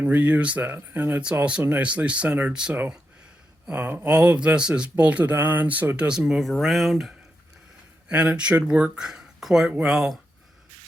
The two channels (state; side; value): normal; both; correlation 0.86